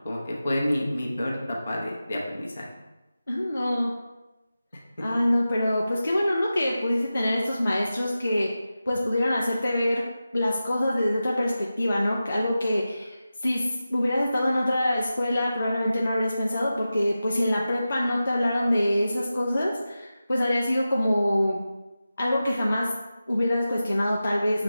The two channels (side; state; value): both; inverted; correlation -0.93